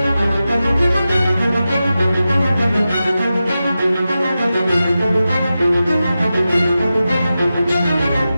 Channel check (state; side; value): inverted; both; correlation -0.92